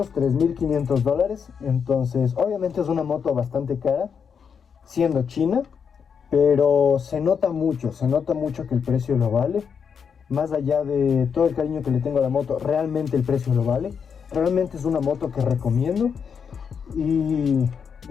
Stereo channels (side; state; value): right; quieter; 6.7 dB